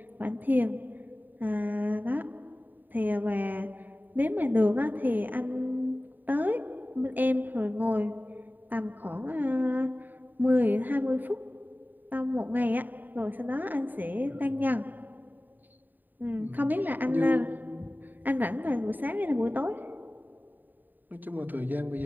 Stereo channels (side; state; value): left; late; 0.089 ms